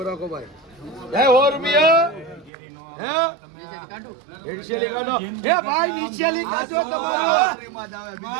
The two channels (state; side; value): drops out; left; at 2.5 s